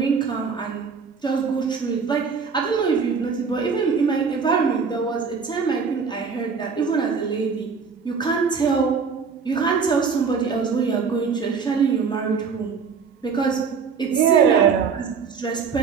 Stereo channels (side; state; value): left; quieter; 5.7 dB